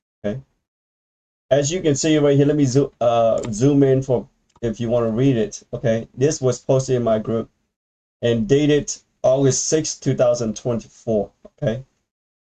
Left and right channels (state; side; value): identical; both; correlation 1.00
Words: Okay, as you can see right here, let me zoom in for if you want to read it. Okay, this was posted in my group and dated August 6, 2024. Okay,